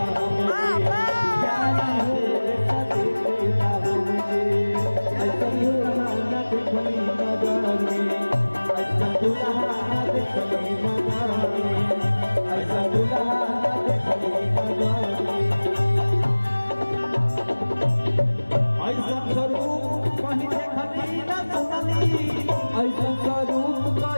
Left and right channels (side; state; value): both; inverted; correlation -1.00